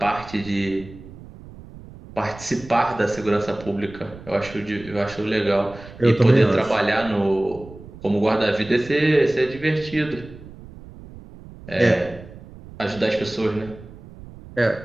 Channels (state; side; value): noise; right; rumble, 17 dB below the sound